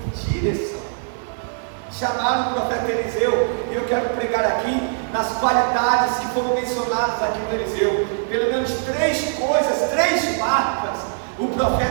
direção. Chamaram o profeta Eliseu, e eu quero pregar aqui nas qualidades que foram mencionadas aqui no Eliseu. Pelo menos 3 coisas, 3 marcas o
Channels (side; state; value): left; silent; digital silence